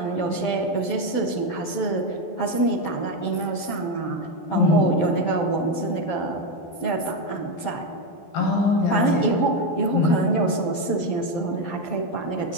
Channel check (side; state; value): right; late; 12 ms